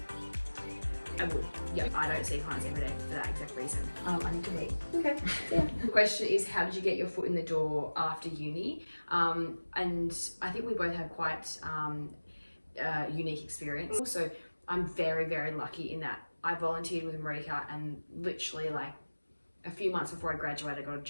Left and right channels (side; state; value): both; inverted; correlation -1.00